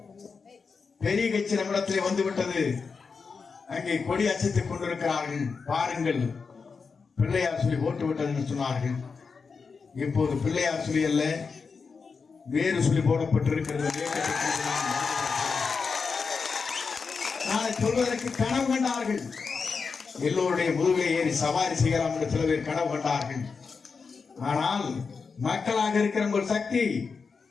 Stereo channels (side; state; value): right; quieter; 5.1 dB